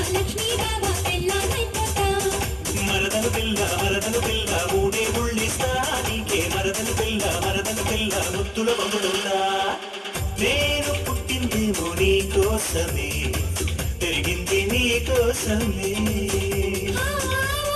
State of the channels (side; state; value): both; identical; correlation 1.00